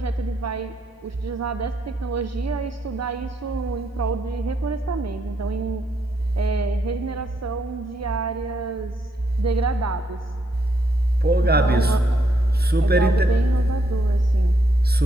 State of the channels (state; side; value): normal; both; correlation 0.76